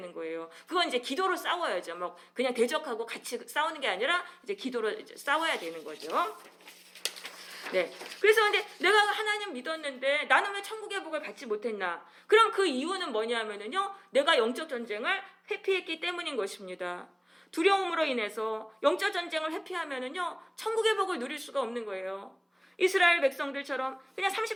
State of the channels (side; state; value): both; identical; correlation 1.00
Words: 거예요. 그건 이제 기도로 싸워야죠. 뭐 그냥 대적하고 같이 싸우는 게 아니라 이제 기도로 이제 싸워야 되는 거죠. 네. 그래서 근데 내가 하나님 믿었는데 나는 왜 천국의 복을 받지 못했나? 그럼 그 이유는 뭐냐면은요, 내가 영적 전쟁을 회피했기 때문인 것입니다. 두려움으로 인해서 영적 전쟁을 회피하면은요, 천국의 복을 누릴 수가 없는 거예요. 이스라엘 백성들처럼 그냥